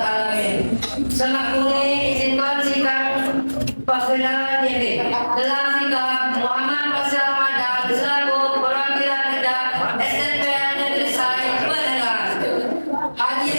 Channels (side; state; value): both; inverted; correlation -1.00